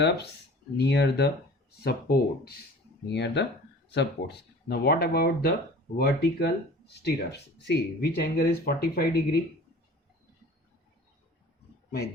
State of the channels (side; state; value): both; normal; correlation 0.44